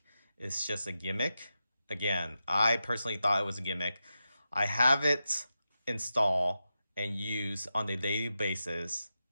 it's just a gimmick. Again, I personally thought it was a gimmick. I have it installed and used on a daily basis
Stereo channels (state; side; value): inverted; both; correlation -0.90